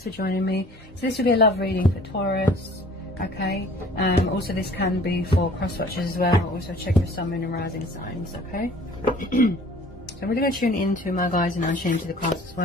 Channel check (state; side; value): normal; both; correlation 0.50